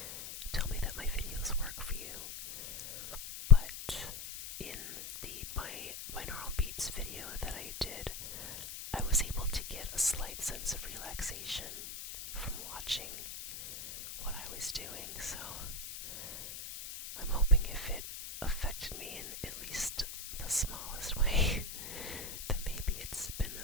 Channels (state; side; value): noise; left; hiss, 9 dB below the sound